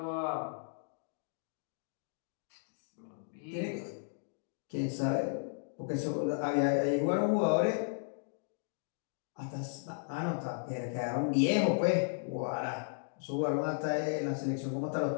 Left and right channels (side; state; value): right; silent; digital silence